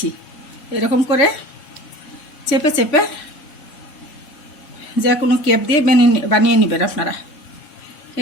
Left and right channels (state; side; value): late; right; 3.9 ms